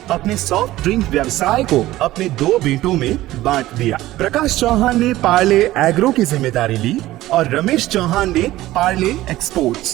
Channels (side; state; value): left; quieter; 16.1 dB